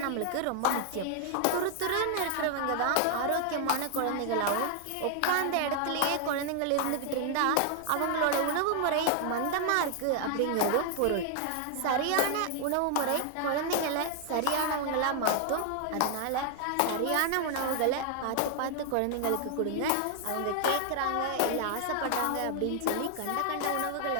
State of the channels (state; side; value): different; both; correlation 0.00